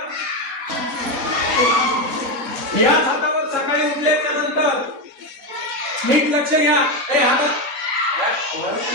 हातावर सकाळी उठल्याच्या नंतर नीट लक्ष घ्या. हे हातात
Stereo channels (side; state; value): left; late; 3.9 ms